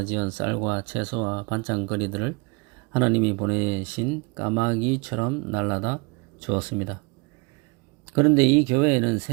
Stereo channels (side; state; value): left; quieter; 29.6 dB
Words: 쌀과 채소와 반찬거리들을 하나님이 보내신 까마귀처럼 날라다 주었습니다. 그런데 이 교회에는